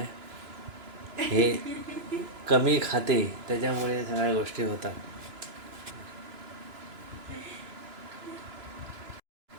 हे कमी खाते त्याच्यामुळे सगळ्या गोष्टी होतात.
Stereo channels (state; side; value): late; left; 2.9 ms